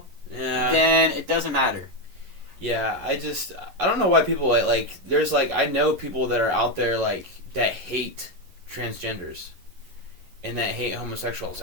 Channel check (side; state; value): left; late; 11 ms